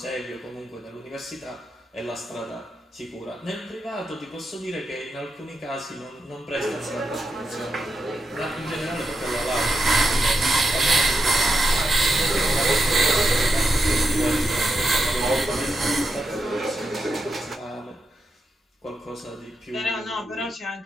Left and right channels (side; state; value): both; normal; correlation 0.85